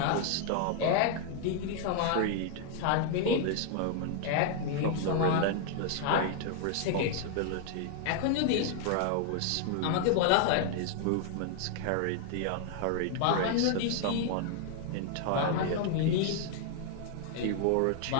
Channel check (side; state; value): both; different; correlation 0.00